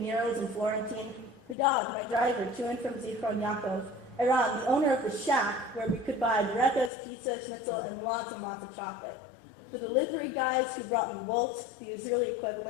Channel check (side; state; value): right; drops out; at 6.9 s